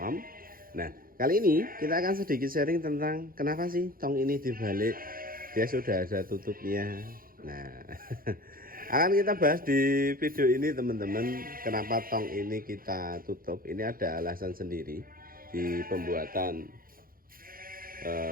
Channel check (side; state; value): left; late; 0.42 ms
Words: Nah, kali ini kita akan sedikit sharing tentang kenapa sih tong ini dibalik. Dia sudah ada tutupnya. Nah, akan kita bahas di video ini teman-teman. Kenapa tong ini kita tutup? Ini ada alasan sendiri di pembuatan